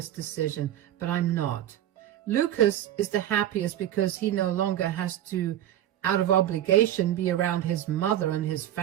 decision, but I'm not. Lucas is the happiest because he no longer has to, out of obligation, be around his mother and his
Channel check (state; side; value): quieter; left; 12.2 dB